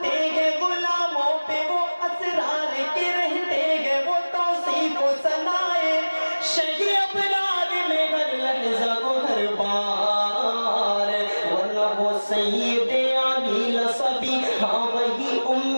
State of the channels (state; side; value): inverted; both; correlation -1.00